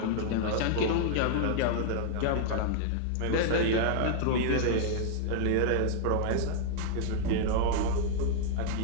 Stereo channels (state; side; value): different; both; correlation -0.01